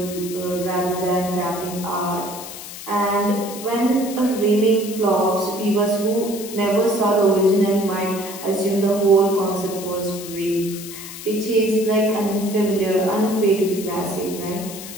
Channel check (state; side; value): noise; left; hiss, 12 dB below the sound